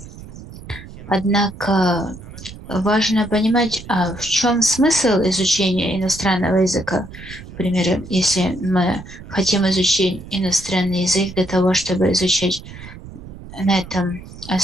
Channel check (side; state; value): right; noise; rumble, 15 dB below the sound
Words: Однако важно понимать, в чем смысл изучения иностранного языка. К примеру, если мы хотим изучить иностранный язык для того, чтобы изучать на этом